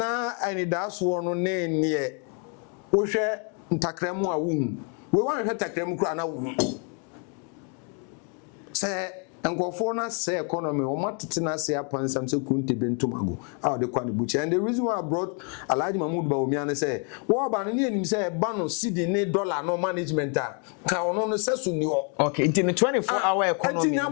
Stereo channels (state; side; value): quieter; right; 39.1 dB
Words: ani das wo no na nie. Wo hwe ntakremu a wo hu. We wan hwe takremu kura na wo hu. Se nkofo na say economy o matete na say apansam say kunte bentumago how the kwan buchi and the reason why I brought Alhaji Mahmood Bawumia na say wo ba no ne anim say ba no cedi ne dollar no management a ka ono no say so ni ho. Okay, in the 24-hour economy enti